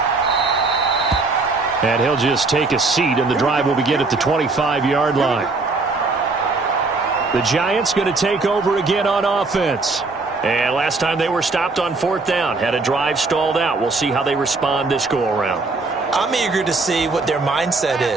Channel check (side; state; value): left; quieter; 3.7 dB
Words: And he'll just take a seat, and the drive will begin at the 25-yard line. The Giants going to take over again on offense. And last time they were stopped on 4th down, had a drive stalled out. We'll see how they respond this go-around. I'm eager to see what their mindset